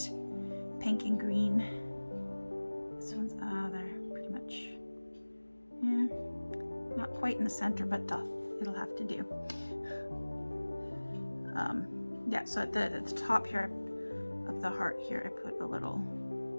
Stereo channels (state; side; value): inverted; both; correlation -1.00